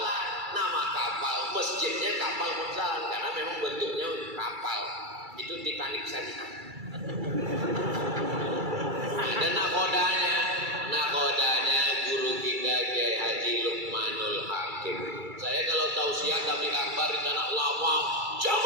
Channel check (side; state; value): left; late; 2.3 ms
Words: Nama kapal, masjidnya Kapal Monsala karena memang bentuknya kapal. Itu Titanic syariah. Ada nakodanya guru kita Kiai Haji Lukmanul Hakim. Saya kalau tausiah tabligh akbar di tanah lawang,